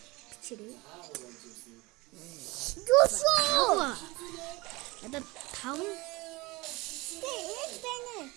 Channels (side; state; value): left; quieter; 23.1 dB